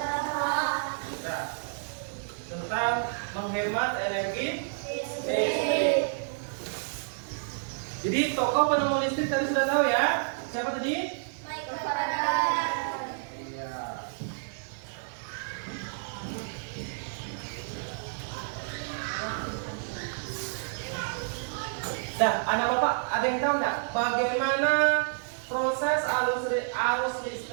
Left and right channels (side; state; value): left; silent; digital silence